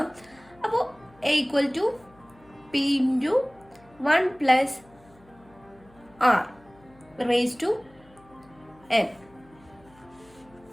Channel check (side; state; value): left; noise; hum, 27 dB below the sound